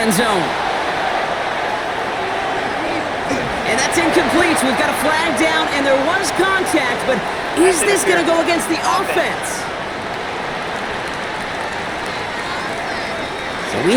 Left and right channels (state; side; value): identical; both; correlation 1.00